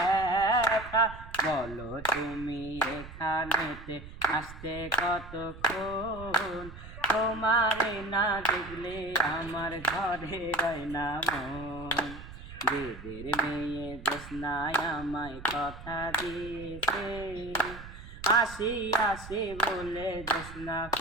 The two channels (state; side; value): noise; right; rumble, 14 dB below the sound